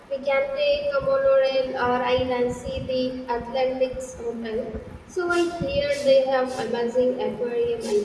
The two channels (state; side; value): identical; both; correlation 1.00